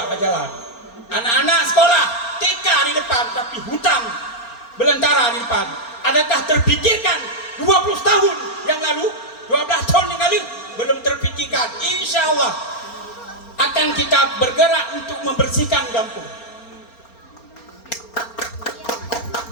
berjalan. Anak-anak sekolah TK di depan, tapi hutan belantara di depan. Adakah terpikirkan 20 tahun yang lalu, 12 tahun yang lalu belum terpikirkan? Insya Allah akan kita bergerak untuk membersihkan kampung.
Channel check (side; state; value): right; late; 4.3 ms